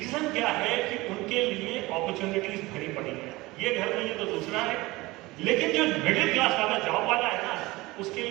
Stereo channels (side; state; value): left; quieter; 20.9 dB